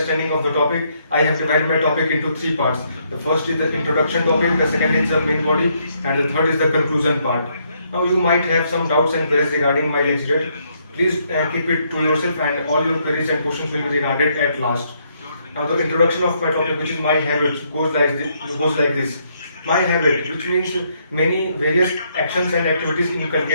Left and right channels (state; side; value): inverted; both; correlation -0.73